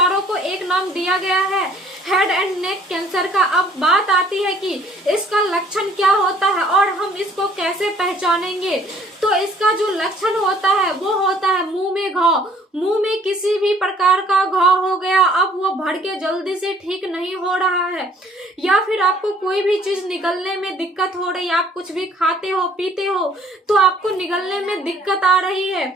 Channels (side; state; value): both; normal; correlation 0.58